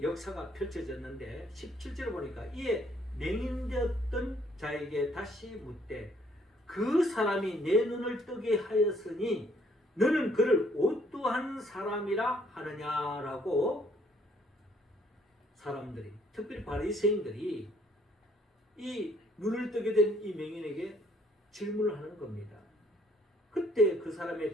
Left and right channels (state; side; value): normal; both; correlation 0.64